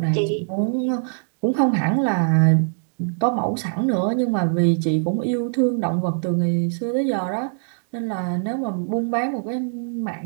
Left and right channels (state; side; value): silent; left; digital silence